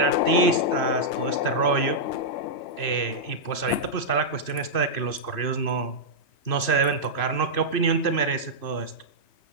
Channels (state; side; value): late; right; 2.6 ms